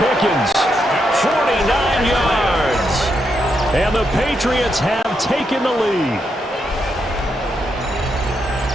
49 yards. And the Patriots have taken the lead.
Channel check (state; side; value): normal; both; correlation 0.81